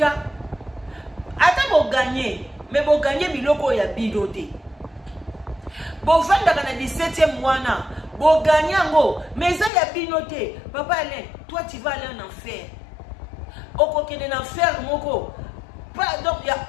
Ata bo gagner, mais bo gagner biloko ya bidote. Bo vanda kana 17e mois bo gagnango mais ça y a binoté papa Alain toi tu vas aller en enfer oko kene en enfer moko pas donc ya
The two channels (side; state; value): right; drops out; at 9.7 s